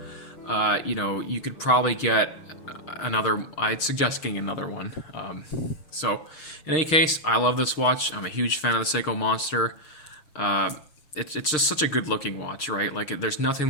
you know, you could probably get another. I'd suggest getting another one. So in any case, I love this watch. I'm a huge fan of the Seiko Monster. It's just such a good looking watch, right? Like, there's nothing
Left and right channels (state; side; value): late; right; 6.5 ms